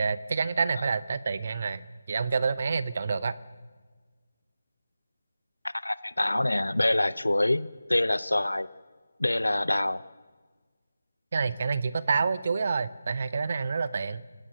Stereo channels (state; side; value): inverted; both; correlation -0.93